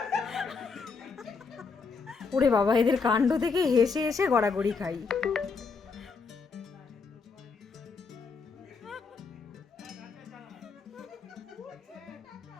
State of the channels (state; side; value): quieter; right; 4.9 dB